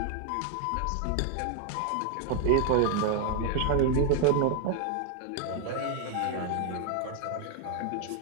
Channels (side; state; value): both; different; correlation 0.00